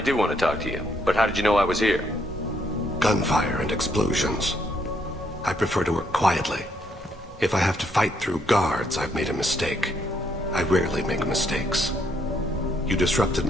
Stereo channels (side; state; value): both; normal; correlation 0.73